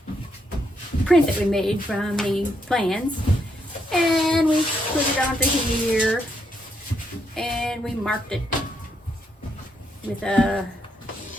print that we made from the plans. And we put it onto here and we marked it with a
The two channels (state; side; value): normal; both; correlation 0.77